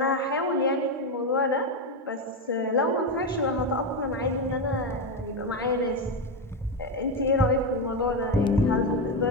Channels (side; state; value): both; normal; correlation 0.11